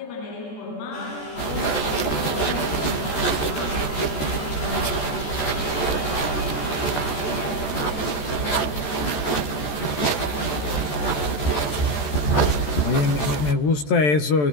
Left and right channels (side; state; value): right; late; 14 ms